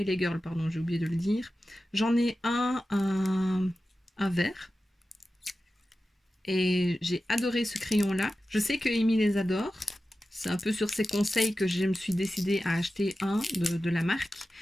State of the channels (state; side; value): normal; both; correlation 0.94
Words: Girl, pardon, j'ai oublié de le dire. J'en ai un vert. Et j'ai adoré ce crayon-là. Je sais que Amy les adore. C'est un peu sur ses conseils que je me suis décidée à acheter un de la marque.